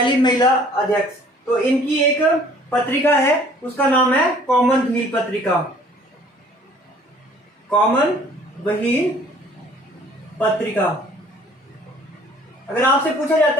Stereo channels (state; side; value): normal; both; correlation 0.55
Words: महिला अध्यक्ष। तो इनकी एक पत्रिका है, उसका नाम है कॉमनवेल्थ पत्रिका। कॉमनवेल्थ पत्रिका। अगर आपसे पूछा